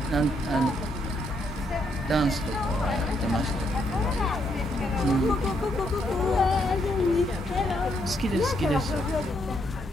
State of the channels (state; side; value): normal; both; correlation 0.75